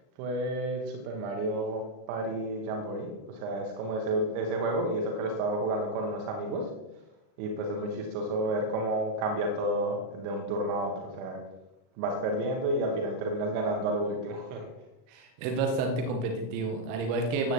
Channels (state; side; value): late; left; 39 ms